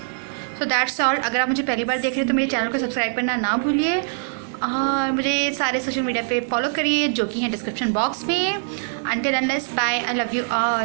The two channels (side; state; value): left; silent; 58 dB below the other